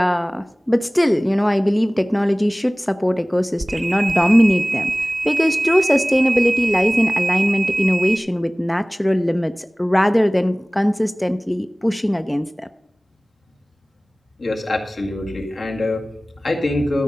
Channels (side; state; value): both; normal; correlation 0.98